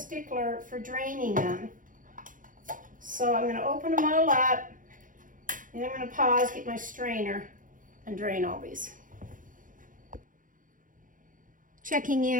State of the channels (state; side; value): late; left; 0.39 ms